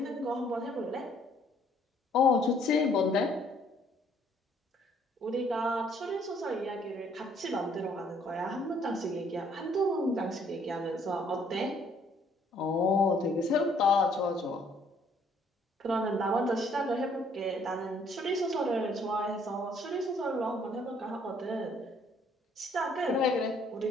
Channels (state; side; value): normal; both; correlation 0.63